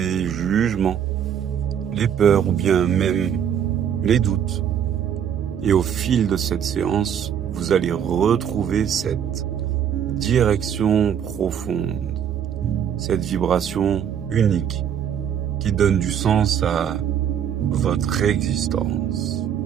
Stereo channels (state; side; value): quieter; left; 8.8 dB